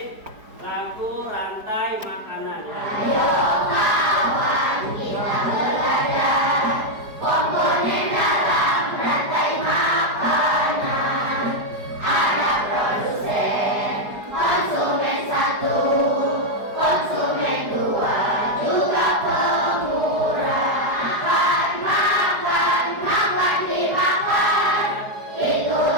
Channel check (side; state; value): left; late; 4.8 ms